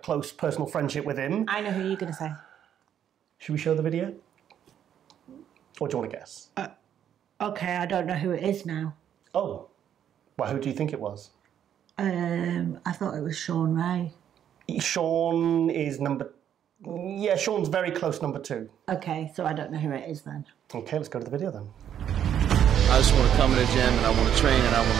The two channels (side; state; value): left; quieter; 9.6 dB